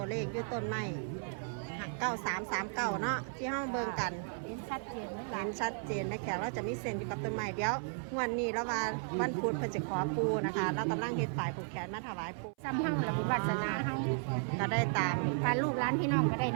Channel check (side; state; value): left; silent; 55 dB below the other